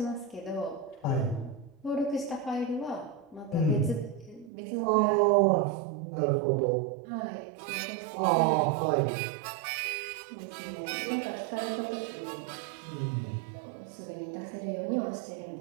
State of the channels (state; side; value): drops out; left; at 4.5 s